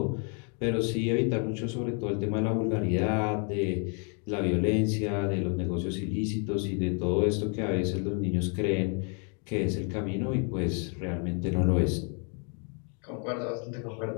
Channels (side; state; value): right; quieter; 38.9 dB